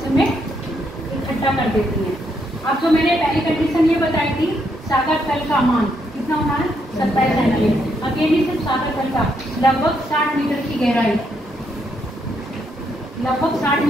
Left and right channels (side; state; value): both; normal; correlation 0.76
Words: में इकट्ठा कर देती हैं। अब जो मैंने पहली कंडीशन ये बताई थी, सागर तल का मान कितना होना है, 27 सेंटीमीटर। अब ये नहीं सिर्फ सागर तल का, लगभग 60 मीटर की गहराई, लगभग 60